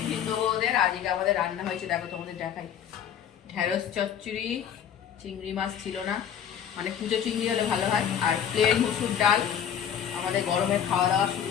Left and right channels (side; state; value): right; quieter; 8.9 dB